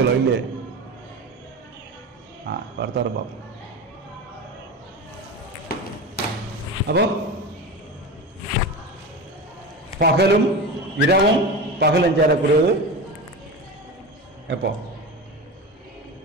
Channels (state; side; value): normal; both; correlation 0.26